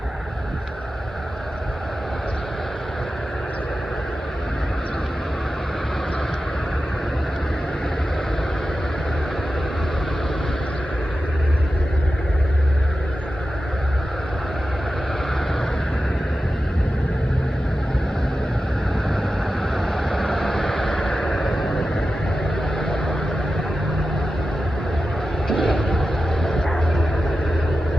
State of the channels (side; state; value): both; normal; correlation 0.93